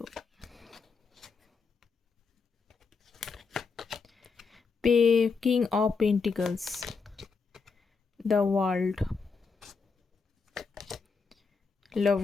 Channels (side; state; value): right; quieter; 4.9 dB